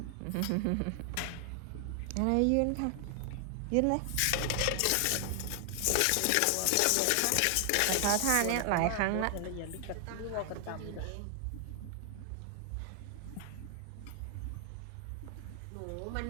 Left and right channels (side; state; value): both; different; correlation 0.00